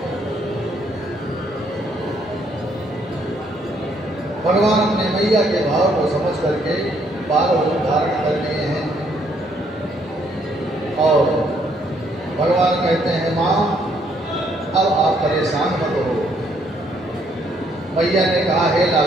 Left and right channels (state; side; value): normal; both; correlation 0.69